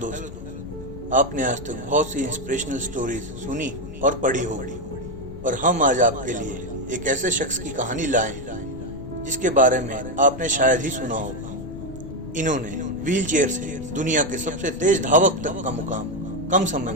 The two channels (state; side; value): noise; left; rumble, 13 dB below the sound